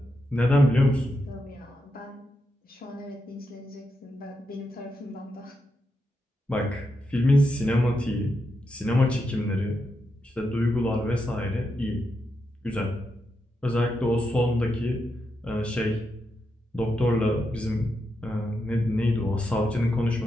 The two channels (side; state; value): both; normal; correlation 0.85